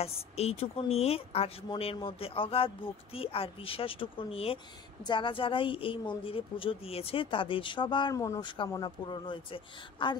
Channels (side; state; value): right; quieter; 6.2 dB